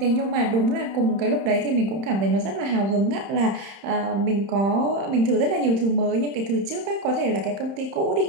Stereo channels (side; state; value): left; late; 31 ms